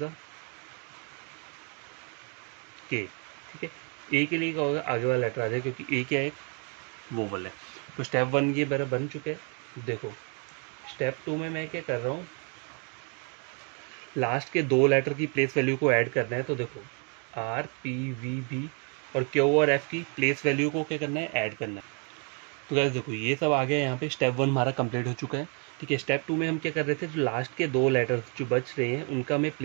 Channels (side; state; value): left; quieter; 38.2 dB